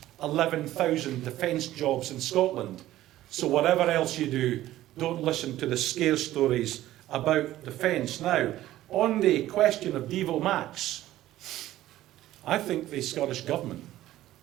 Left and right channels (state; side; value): quieter; left; 14.6 dB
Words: 11,000 defence jobs in Scotland. So whatever else you do, don't listen to the scare stories about defence. Now, on the question of Devo Max, I think the Scottish Government